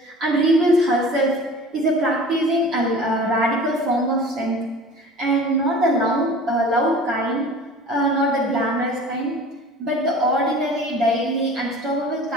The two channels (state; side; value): normal; both; correlation 0.42